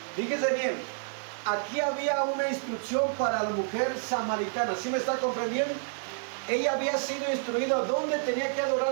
Fíjese bien, aquí había una instrucción para la mujer samaritana. ¿Sí me está comprendiendo? Ella había sido instruida dónde tenía que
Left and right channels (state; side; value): silent; left; 57 dB below the other